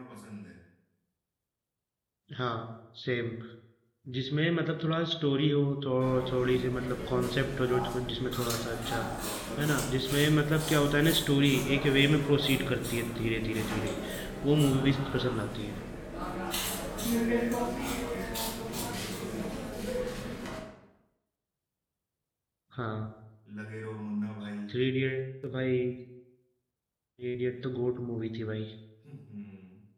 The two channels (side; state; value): both; identical; correlation 1.00